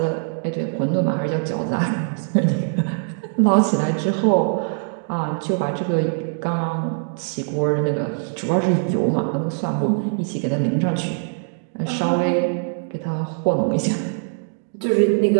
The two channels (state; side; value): silent; left; 64 dB below the other